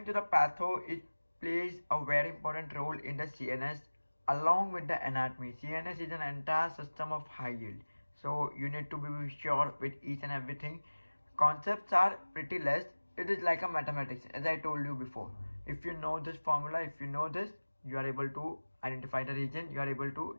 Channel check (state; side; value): inverted; both; correlation -1.00